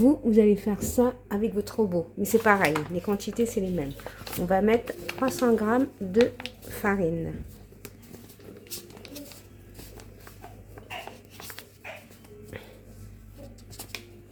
allez faire ça avec votre robot, mais c'est pareil, les quantités c'est les mêmes. On va mettre 300 g de farine.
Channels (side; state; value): both; identical; correlation 1.00